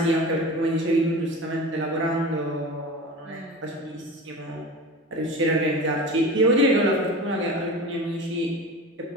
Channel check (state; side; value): normal; both; correlation 0.33